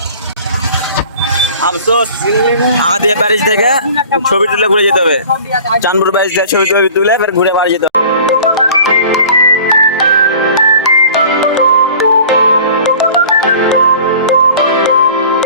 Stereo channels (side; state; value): both; inverted; correlation -0.45